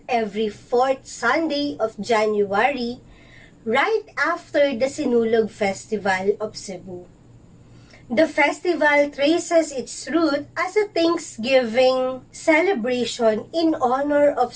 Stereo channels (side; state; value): both; identical; correlation 1.00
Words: every fourth Sunday of January, right after the Sinulog Festival of Cebu. The festival traces its root as a Thanksgiving celebration in honor of